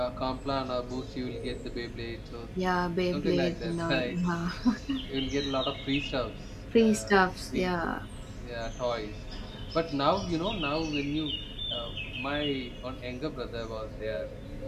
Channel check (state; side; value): identical; both; correlation 1.00